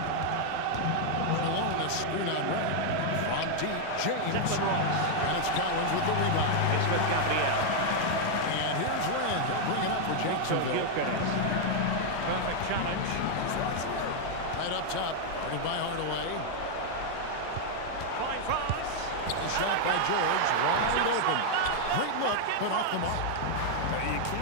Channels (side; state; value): both; different; correlation 0.00